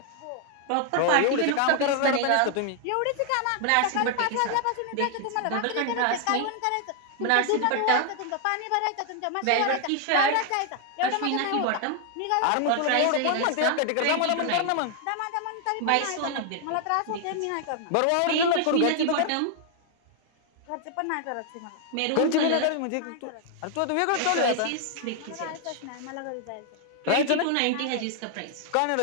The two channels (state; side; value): different; both; correlation 0.00